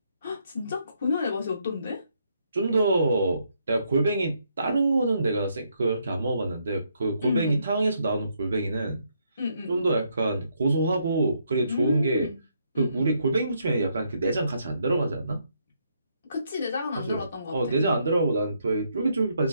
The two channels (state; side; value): inverted; both; correlation -0.75